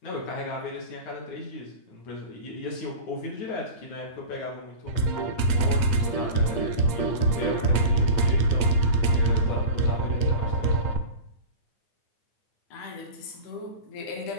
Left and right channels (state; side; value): late; right; 8.6 ms